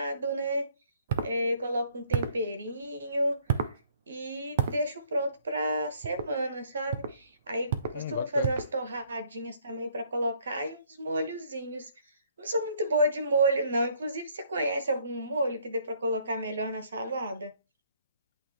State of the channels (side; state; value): both; inverted; correlation -0.63